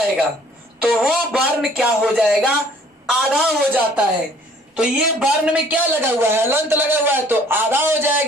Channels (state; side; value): normal; both; correlation 0.56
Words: तो वो वर्ण क्या हो जाएगा, आधा हो जाता है। तो ये वर्ण में क्या लगा हुआ है, हलंत लगा हुआ है, तो आधा हो